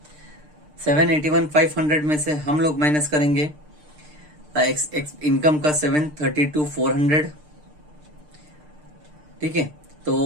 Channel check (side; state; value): left; late; 6.6 ms